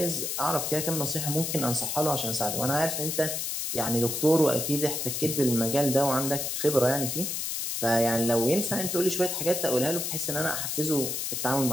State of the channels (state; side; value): noise; left; hiss, 2 dB below the sound